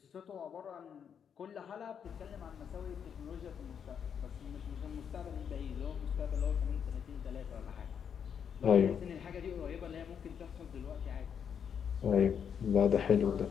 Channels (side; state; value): right; quieter; 7.7 dB